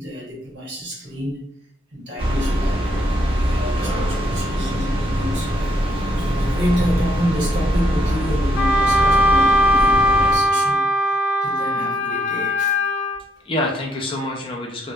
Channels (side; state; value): both; normal; correlation 0.72